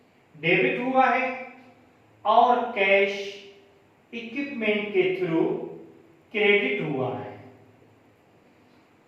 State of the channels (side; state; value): both; identical; correlation 1.00